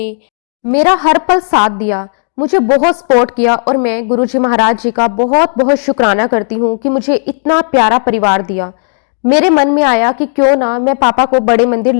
मेरा हर पल साथ दिया, मुझे बहुत सपोर्ट किया। और मैं गुरुजी महाराज जी का बहुत बहुत शुक्राना करती हूँ कि मुझे इतना प्यारा परिवार दिया। मेरे मन में आया कि क्यों ना मैं पापा को बड़े मंदिर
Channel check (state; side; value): silent; right; digital silence